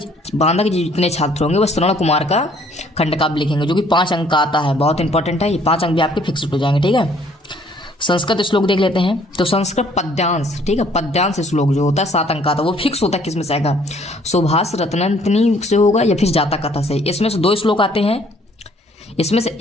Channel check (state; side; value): normal; both; correlation 0.61